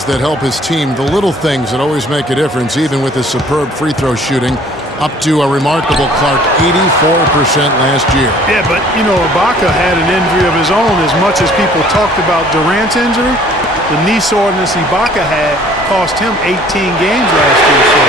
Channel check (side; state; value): both; normal; correlation 0.55